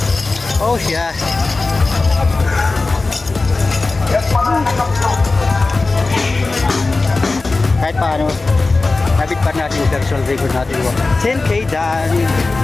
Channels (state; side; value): quieter; right; 3.5 dB